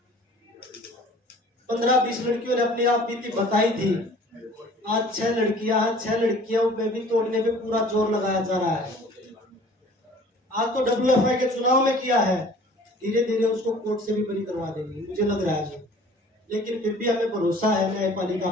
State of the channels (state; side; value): normal; both; correlation 0.49